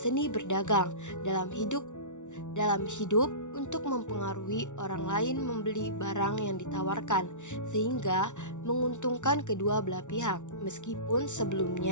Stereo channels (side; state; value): right; late; 0.85 ms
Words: berdagang, dalam hidup untuk mempengaruhi orang lain membeli barang yang ditawarkan, sehingga menguntungkan kedua belah pihak, meskipun